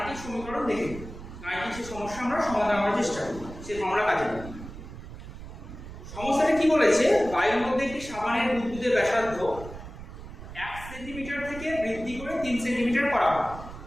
সমীকরণ দেখে নিই, গাণিতিক সেই সমস্যা আমরা সমাধান করার চেষ্টা করি, সেই ফর্মুলা কাজে লাগাই। সমস্যাটা কি বলেছে, বায়ুর মধ্যে একটি সাবানের বুদবুদের ব্যাসার্ধ 1 সেন্টিমিটার থেকে বৃদ্ধি করে 3 সেন্টিমিটার করা হয়।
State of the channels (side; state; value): right; noise; rumble, 13 dB below the sound